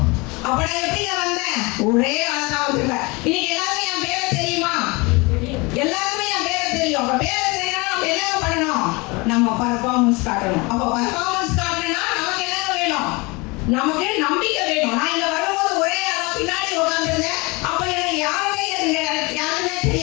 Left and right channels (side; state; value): right; quieter; 26.1 dB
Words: அப்ப நான் எப்படிங்க வந்தேன்? ஒரே ஆளா வந்துருக்கேன். இன்னைக்கு எல்லாருமே என் பேரை தெரியுமா? எல்லாருமே என் பேரை தெரியும். அப்ப பேரை தெரியும்னா நம்ம என்ன பண்ணணும்? நம்ம பர்ஃபார்மன்ஸ் காட்டணும். அப்ப பர்ஃபார்மன்ஸ் காட்டணும்னா நமக்கு என்ன வேணும்? நமக்கு நம்பிக்கை வேணும். நான் இங்க வரும்போது ஒரே ஆளா பின்னாடி உட்காந்துருந்தேன். அப்ப எனக்கு யாருமே